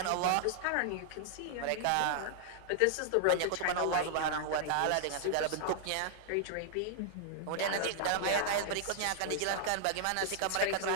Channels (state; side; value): different; both; correlation -0.01